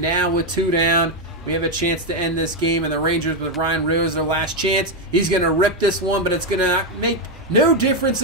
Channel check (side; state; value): both; normal; correlation 0.05